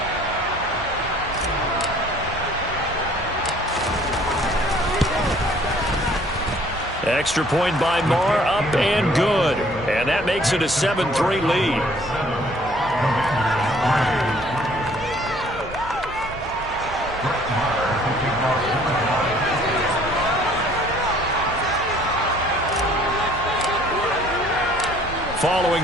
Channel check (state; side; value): noise; right; hum, 20 dB below the sound